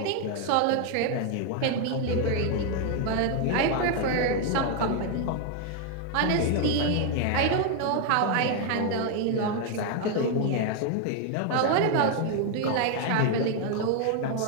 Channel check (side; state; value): both; different; correlation 0.01